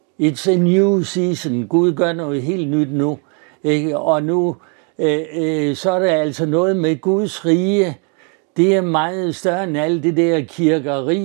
It's a new season. Gud gør noget helt nyt nu. Ikke? Og nu så er der altså noget med Guds rige. Det er meget større end alt det der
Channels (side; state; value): left; quieter; 38.4 dB